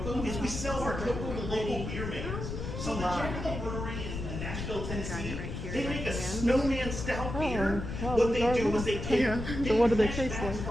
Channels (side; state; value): left; noise; rumble, 5 dB below the sound